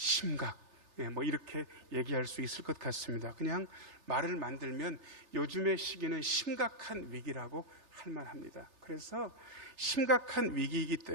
뭐 이렇게 얘기할 수 있을 것 같습니다. 그냥 말을 만들면 요즘의 시기는 심각한 위기라고 할 만합니다. 그래서 심각한 위기이기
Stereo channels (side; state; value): left; late; 3.3 ms